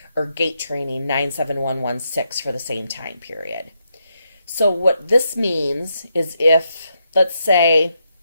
or Gait Training 97116 for the same time period. So what this means is if, let's say,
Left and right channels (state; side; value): inverted; both; correlation -0.81